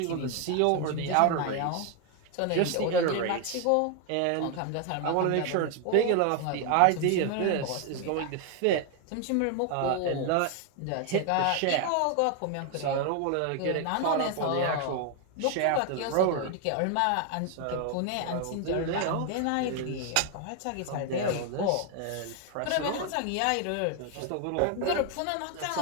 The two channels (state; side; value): different; both; correlation 0.01